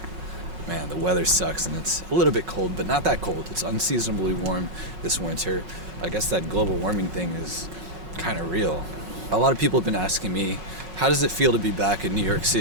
man, the weather sucks and it's a little bit cold, but not that cold. It's unseasonably warm this winter. I guess that global warming thing is kind of real. A lot of people have been asking me, how does it feel to be back in New York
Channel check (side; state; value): left; late; 5.3 ms